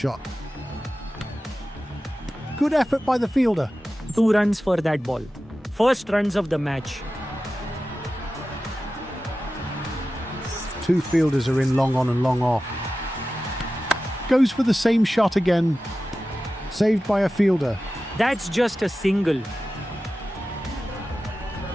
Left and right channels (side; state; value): both; normal; correlation 0.94